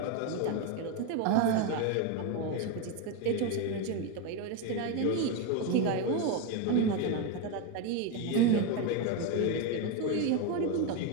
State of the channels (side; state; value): both; different; correlation 0.03